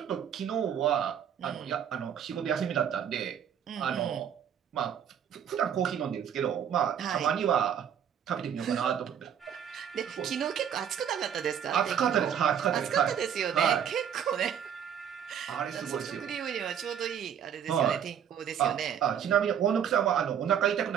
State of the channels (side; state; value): left; quieter; 8.8 dB